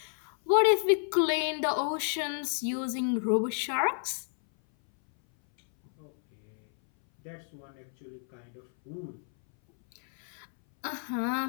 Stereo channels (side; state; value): right; silent; 58 dB below the other